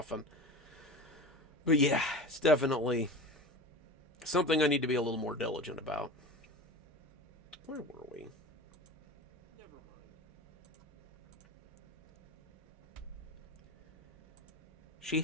But yeah, it's definitely something I need to be a little more diligent about. Where were we? She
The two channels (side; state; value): both; normal; correlation 0.32